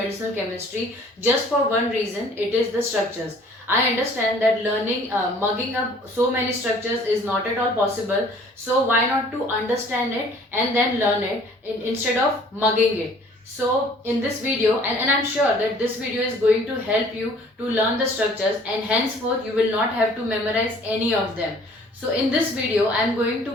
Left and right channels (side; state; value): both; normal; correlation 0.54